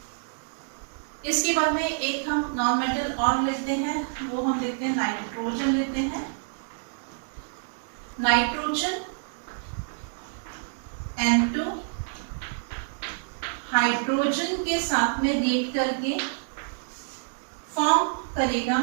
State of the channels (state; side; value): silent; left; digital silence